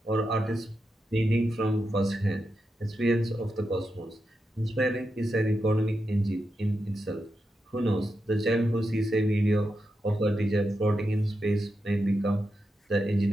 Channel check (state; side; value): normal; both; correlation 0.87